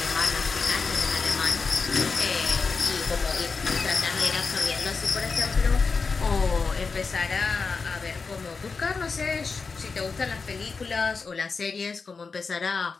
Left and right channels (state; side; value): quieter; right; 4.7 dB